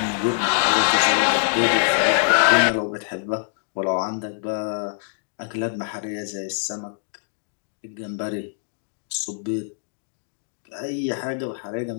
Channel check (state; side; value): silent; right; digital silence